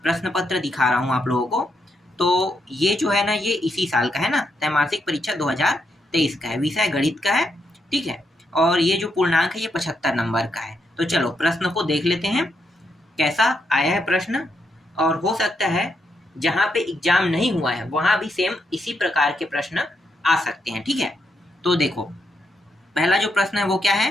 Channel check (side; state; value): both; normal; correlation 0.80